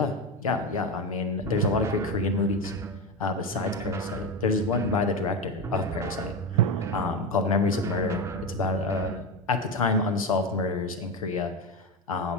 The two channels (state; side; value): normal; both; correlation 0.17